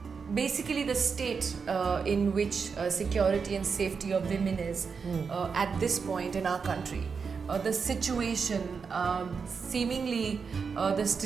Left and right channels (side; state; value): left; quieter; 5.6 dB